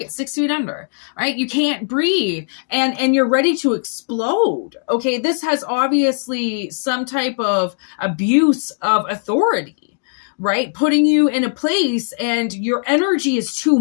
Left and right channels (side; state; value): right; silent; digital silence